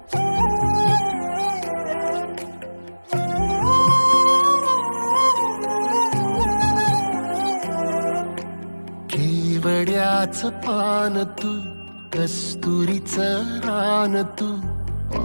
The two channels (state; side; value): inverted; both; correlation -1.00